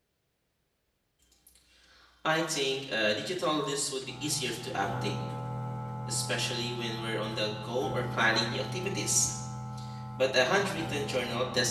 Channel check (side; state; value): both; identical; correlation 1.00